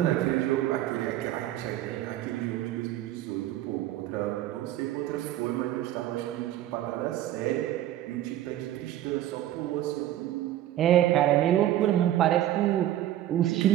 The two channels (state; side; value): quieter; left; 13.1 dB